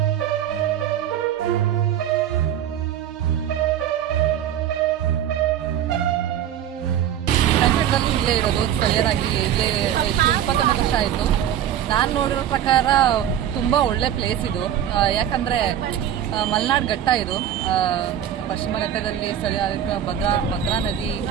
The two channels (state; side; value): quieter; left; 10.4 dB